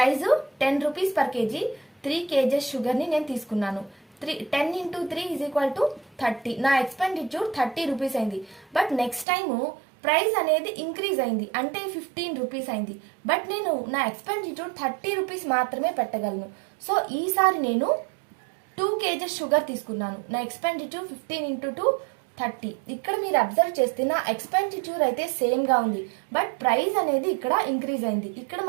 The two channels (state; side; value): drops out; left; at 9.2 s